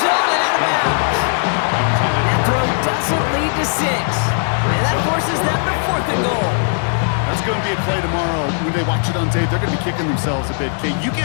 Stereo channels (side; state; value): right; silent; 61 dB below the other